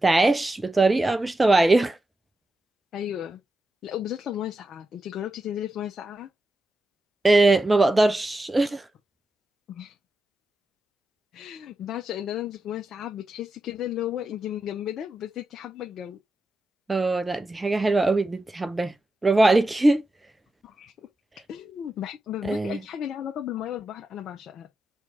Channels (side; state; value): both; normal; correlation 0.89